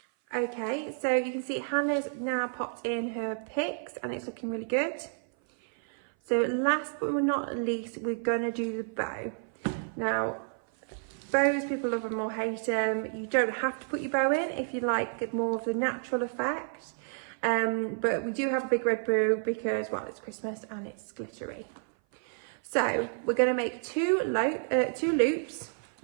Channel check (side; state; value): left; silent; 56 dB below the other